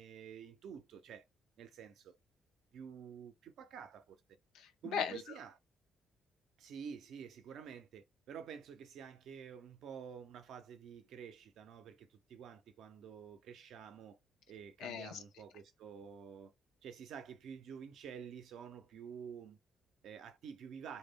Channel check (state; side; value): normal; both; correlation 0.55